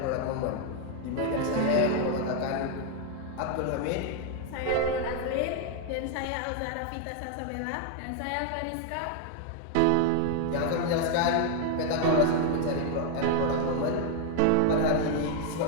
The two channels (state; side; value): different; both; correlation 0.00